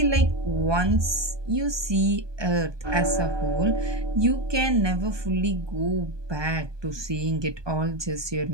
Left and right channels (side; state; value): left; late; 1.2 ms